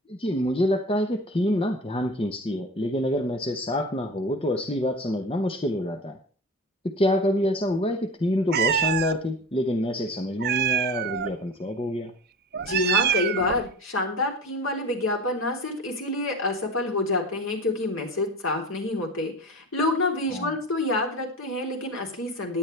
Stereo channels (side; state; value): both; normal; correlation 0.33